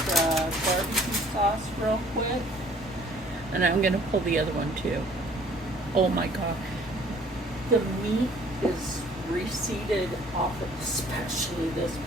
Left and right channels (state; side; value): normal; both; correlation 0.56